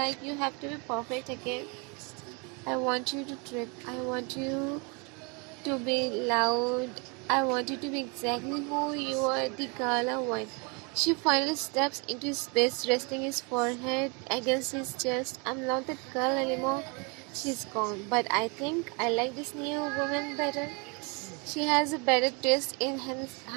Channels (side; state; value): left; quieter; 32.1 dB